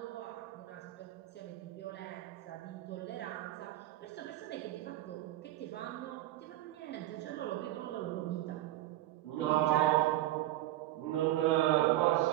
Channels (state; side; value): quieter; left; 15.1 dB